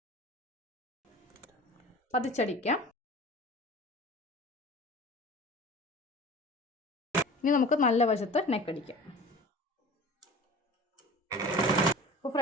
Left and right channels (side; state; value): both; normal; correlation 0.40